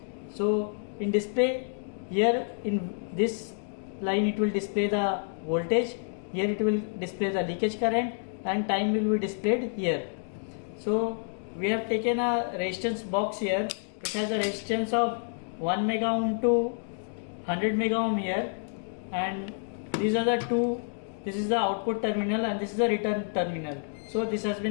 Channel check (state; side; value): silent; right; digital silence